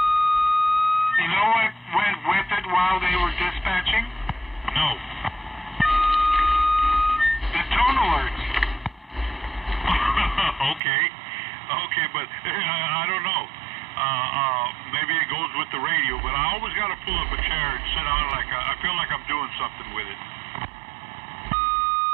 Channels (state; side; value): drops out; left; at 10.8 s